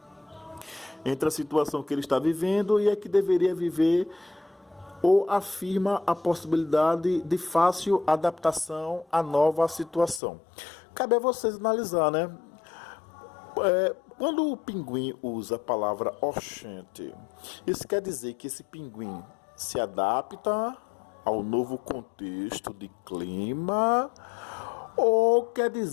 Entre a situação que ele está vivendo e a que deveria viver, ou afirma a possibilidade de fácil adaptação à nova situação. Cabe a vocês analisar, né? Quando o pinguim usa a palavra oxente, isso quer dizer que esse pinguim se adapta ao novo contexto de clima, ou quer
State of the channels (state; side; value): drops out; right; at 10.2 s